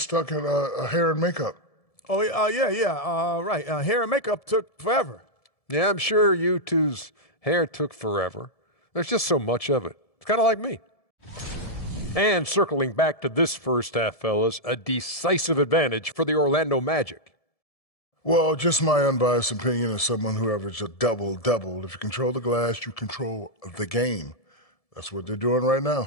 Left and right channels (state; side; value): late; right; 1.7 ms